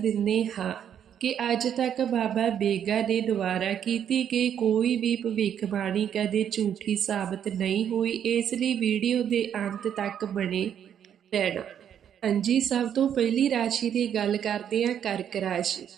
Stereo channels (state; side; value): quieter; left; 9.1 dB